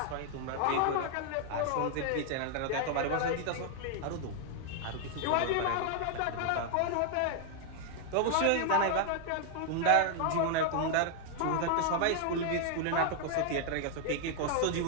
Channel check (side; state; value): both; different; correlation 0.00